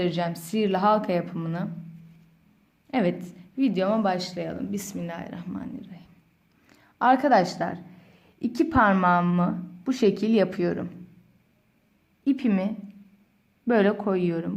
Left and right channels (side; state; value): both; identical; correlation 1.00